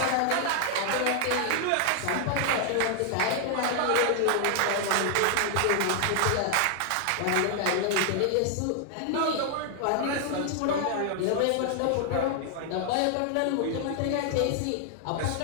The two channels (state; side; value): different; both; correlation 0.00